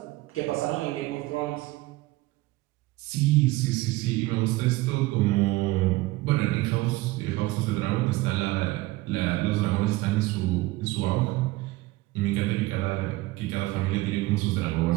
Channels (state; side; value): quieter; left; 19.5 dB